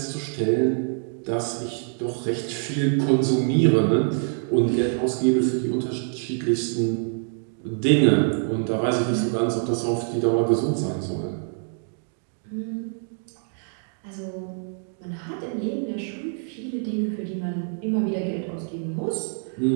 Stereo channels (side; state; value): left; silent; 62 dB below the other